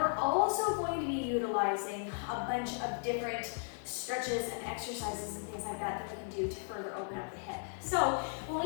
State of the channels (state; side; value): silent; right; digital silence